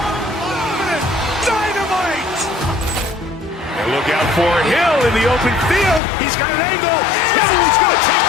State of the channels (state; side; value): drops out; right; at 6.0 s